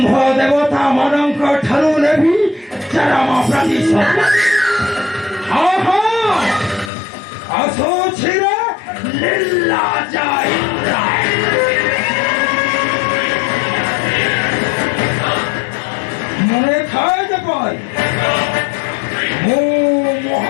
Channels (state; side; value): drops out; right; at 6.9 s